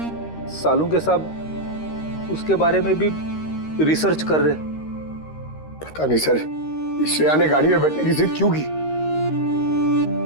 सालुंके साहब उसके बारे में भी रिसर्च कर रहे। पता नहीं सर, श्रेया ने गाड़ी में बैठने की जिद क्यों की?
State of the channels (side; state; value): right; late; 13 ms